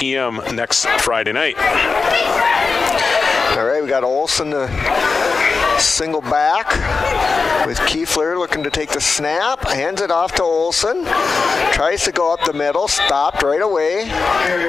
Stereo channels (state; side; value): quieter; right; 4.5 dB